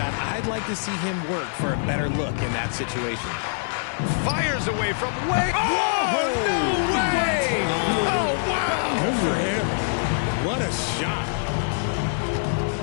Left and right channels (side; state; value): right; silent; digital silence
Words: I'd like to see him work for a better look in that situation. Fires away from way. Oh, no way! Oh, wow! Good for him. What a shot.